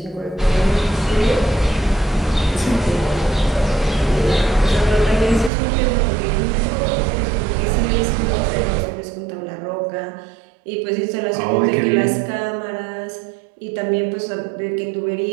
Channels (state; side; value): drops out; left; at 5.5 s